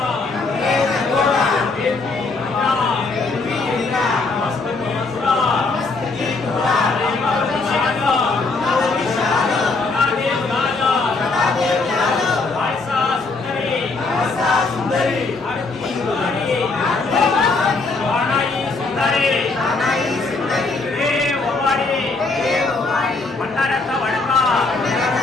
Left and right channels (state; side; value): quieter; right; 3.7 dB